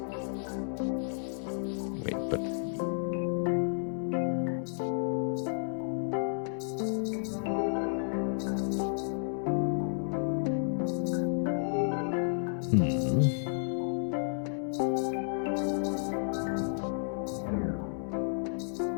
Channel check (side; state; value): right; silent; digital silence